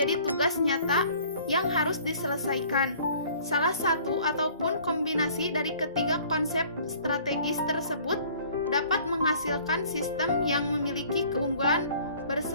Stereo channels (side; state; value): both; inverted; correlation -0.53